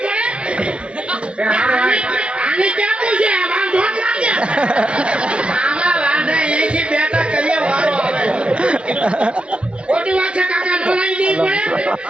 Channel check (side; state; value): left; late; 0.058 ms